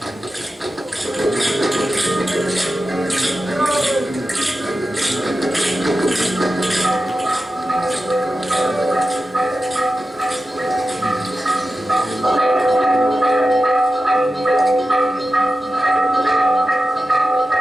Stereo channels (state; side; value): normal; both; correlation 0.93